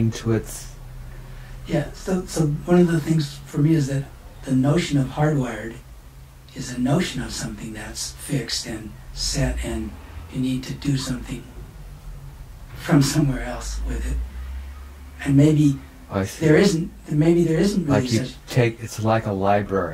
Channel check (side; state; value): both; identical; correlation 1.00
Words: to its? Yeah. So one of the things for me is that the notion of hardwired is a notion of something that's fixed and set, and you need to do something from somewhere else with it. And maybe there isn't really like you such. It's like a